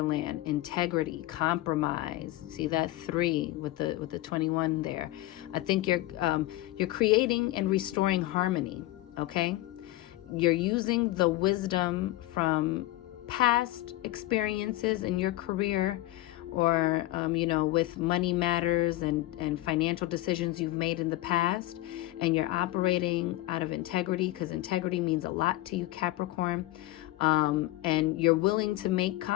integrity, compromise. See that 3 with the 21 there. I think you're creating and restoring harmony, okay? You're using the wisdom from past experiences in your career, or with money matters and financial decisions you've made in the past, and you're operating out of integrity, because integrity means a lot to you, Capricorn. And you're willing to make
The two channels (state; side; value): quieter; right; 17.2 dB